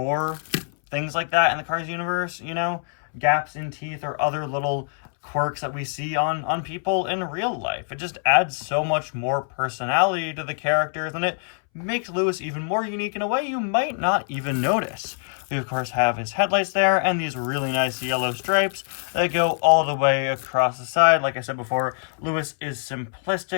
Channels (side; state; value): right; silent; 62 dB below the other